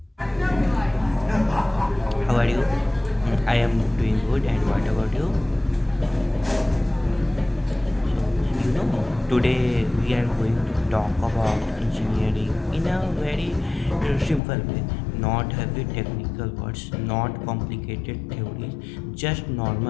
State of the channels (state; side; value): drops out; right; at 14.4 s